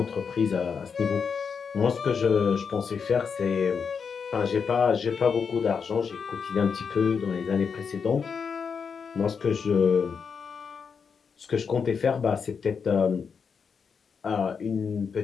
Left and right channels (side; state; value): right; quieter; 6.1 dB